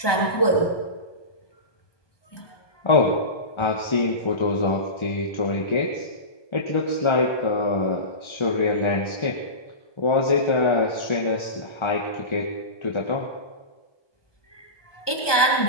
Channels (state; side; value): late; right; 1.2 ms